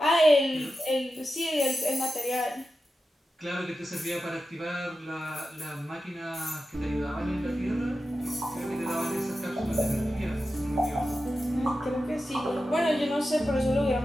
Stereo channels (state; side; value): normal; both; correlation 0.92